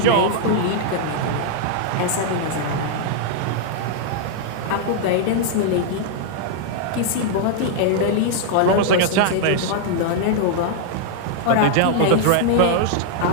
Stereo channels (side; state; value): both; different; correlation -0.01